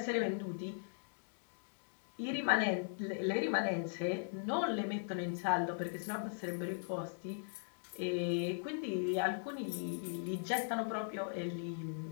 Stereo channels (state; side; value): silent; right; digital silence